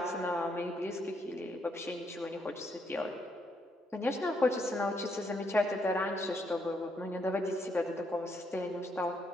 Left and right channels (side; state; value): both; normal; correlation 0.75